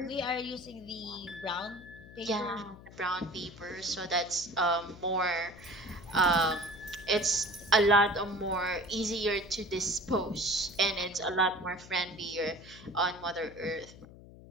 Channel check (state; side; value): noise; left; hum, 18 dB below the sound